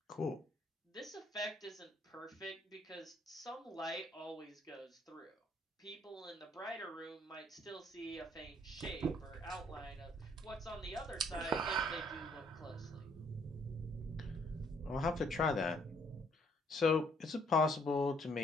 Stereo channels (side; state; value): both; normal; correlation 0.65